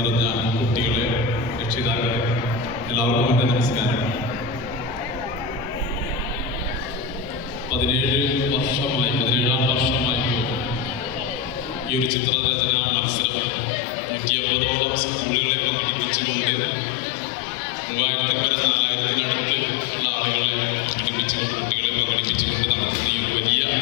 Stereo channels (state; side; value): drops out; right; at 12.1 s